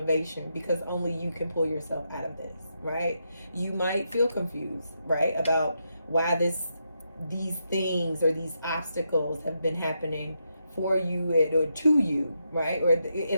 because only you can pull yourself out of this, right? You might feel confused, right, about why these things or these obstacles have been happening for you or to you, right? Or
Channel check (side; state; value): both; inverted; correlation -0.83